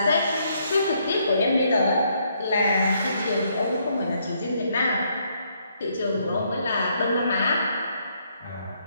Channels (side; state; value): both; inverted; correlation -0.72